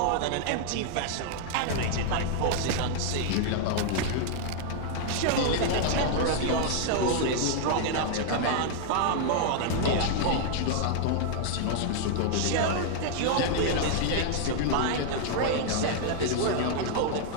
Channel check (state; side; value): different; both; correlation 0.00